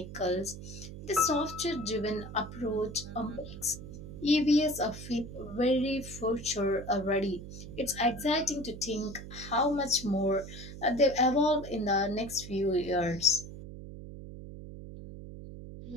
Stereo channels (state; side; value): noise; right; hum, 12 dB below the sound